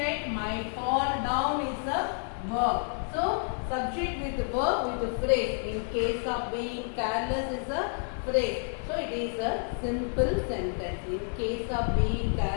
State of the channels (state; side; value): silent; right; 58 dB below the other